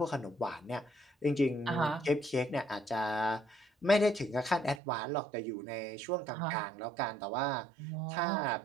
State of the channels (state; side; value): drops out; left; at 4.8 s